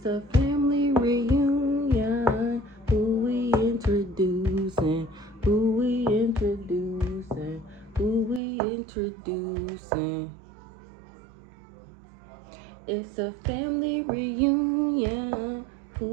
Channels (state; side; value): drops out; left; at 8.4 s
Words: a family reunion. Who we introducing? Who we introducing? Who we introducing? It's a family reunion.